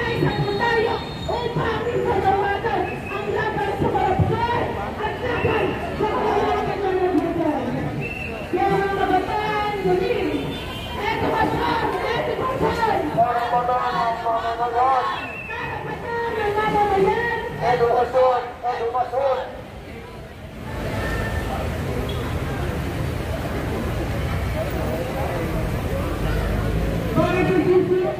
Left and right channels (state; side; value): identical; both; correlation 1.00